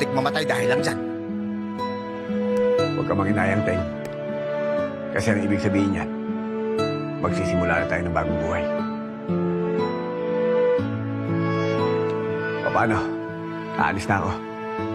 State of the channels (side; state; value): both; identical; correlation 1.00